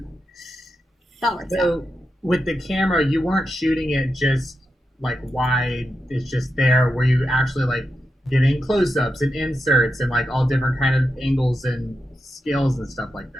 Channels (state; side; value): normal; both; correlation 0.88